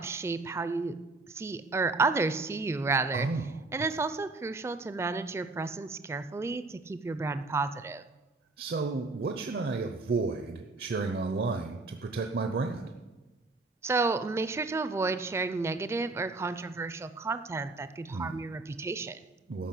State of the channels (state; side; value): quieter; left; 3.4 dB